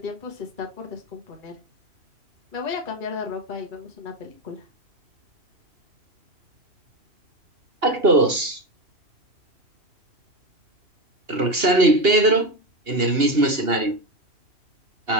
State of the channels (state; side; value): late; left; 2.8 ms